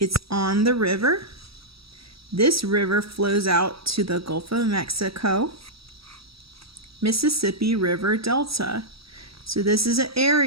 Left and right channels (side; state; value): left; late; 0.76 ms